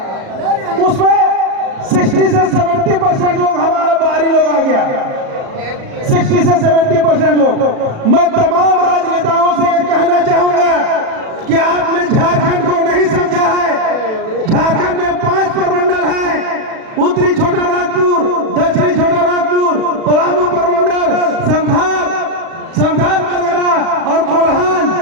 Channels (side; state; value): left; late; 37 ms